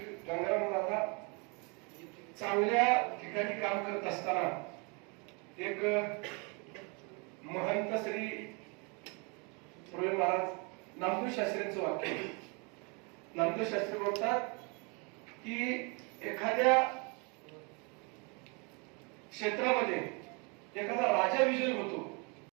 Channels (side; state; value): left; quieter; 32.5 dB